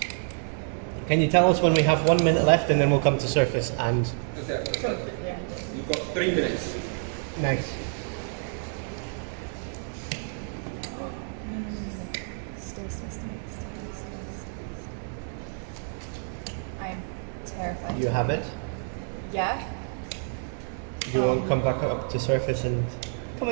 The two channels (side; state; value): left; silent; 57 dB below the other